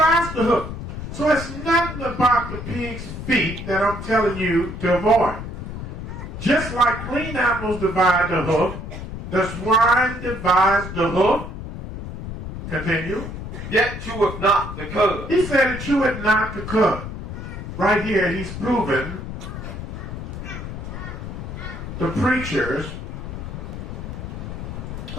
the hoof. So it's nothing about the pig's feet that I'm telling you to avoid. Just like clean animals divide the hoof, the swine divides the hoof. Continue. Yet cheweth not the cud. He said it cheweth not the cud. Right here he's proven the preachers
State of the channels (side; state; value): left; noise; rumble, 8 dB below the sound